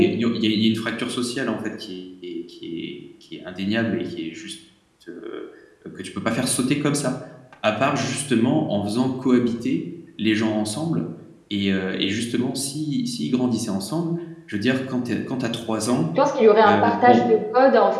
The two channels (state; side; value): identical; both; correlation 1.00